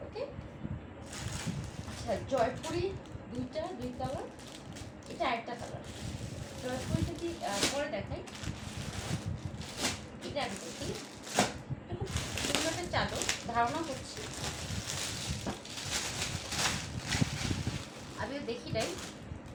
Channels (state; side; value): identical; both; correlation 1.00